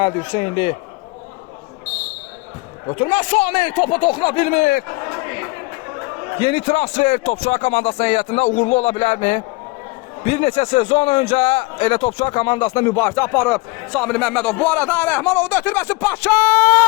Hüseynli. Ötürmə Sami, topa toxuna bilmir. Yeni transfer Topçular komandasının heyətində uğurlu ola bilərmi? Bir neçə sezon öncə elə Topçular komandasına mübarizə aparıb Samir Məmmədov. Bu arada Rəhmanov da ötürməsi Paşa!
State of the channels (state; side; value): quieter; right; 24.7 dB